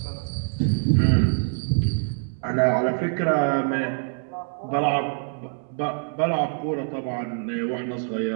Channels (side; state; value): left; silent; digital silence